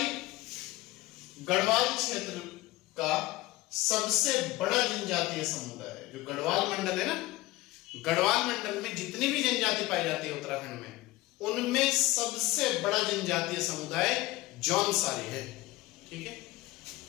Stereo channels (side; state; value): right; quieter; 18.8 dB